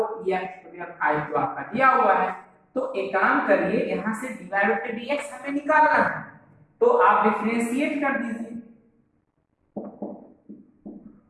ex to the power 5 जो आपका दिया हुआ है। तो एक काम करिए, यहां से dy बाय dx हमें निकालना है, तो आप डिफरेंशिएट कर दीजिए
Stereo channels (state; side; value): identical; both; correlation 1.00